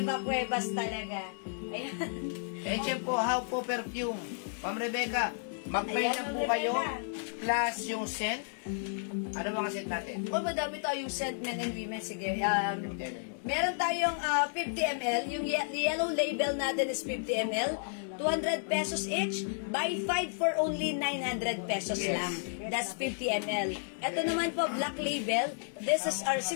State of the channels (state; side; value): silent; right; digital silence